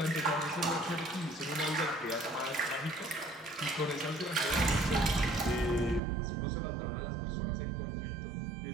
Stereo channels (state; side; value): drops out; left; at 6.0 s